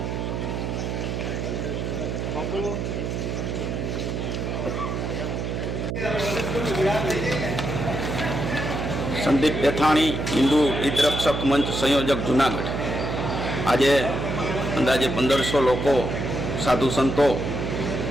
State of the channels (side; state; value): right; noise; hum, 3 dB below the sound